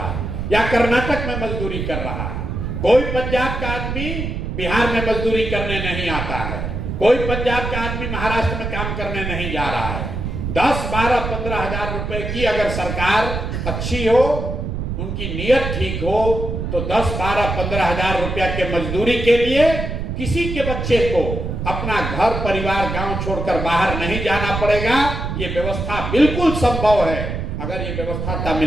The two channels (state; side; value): noise; right; rumble, 4 dB below the sound